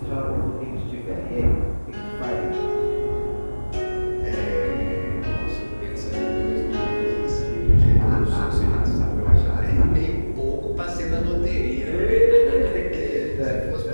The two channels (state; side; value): inverted; both; correlation -1.00